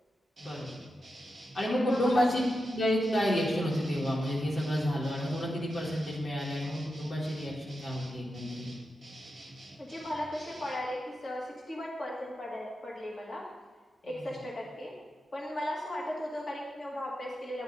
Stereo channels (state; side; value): normal; both; correlation 0.89